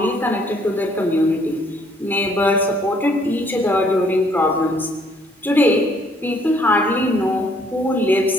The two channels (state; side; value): normal; both; correlation 0.64